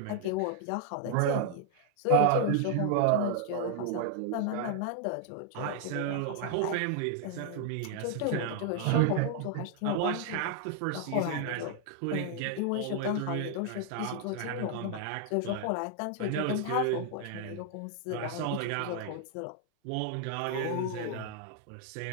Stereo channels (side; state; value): both; different; correlation 0.00